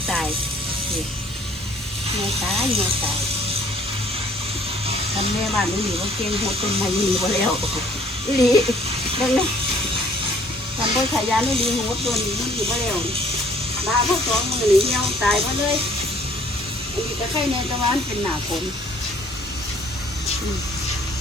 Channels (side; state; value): both; normal; correlation 0.59